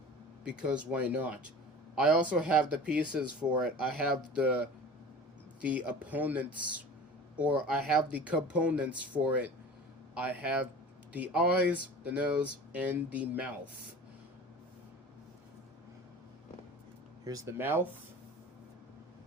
because why not? I also have the pieces for it. I have the opponents, or I have the components for it. I have the eyes, the nose, and the mouth. Here's the mouth,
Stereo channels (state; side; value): normal; both; correlation 0.38